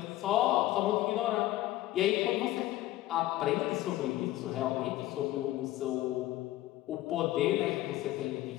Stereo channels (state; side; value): quieter; right; 15.7 dB